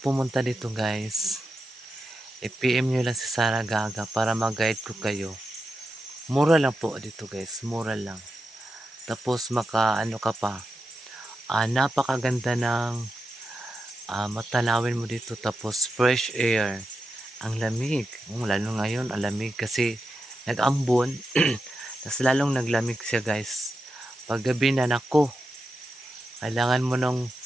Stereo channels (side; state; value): both; normal; correlation 0.89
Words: dito guys, i-PM nyo lang si Sarah Gaga para mag-guide ko kayo. Mura lang po dito guys, mura lang. Tapos ka pa. Napakaganda ng matanawin mo dito, tapos fresh air. Ang lamig. Lalo ngayon, ang lamig kasi nag-ambon. Tapos lalong naglamig siya guys. Paggabi na nako, kailangan mo nang